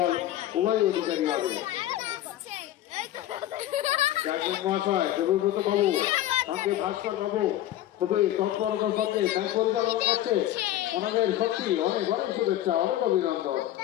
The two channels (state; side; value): quieter; right; 13.5 dB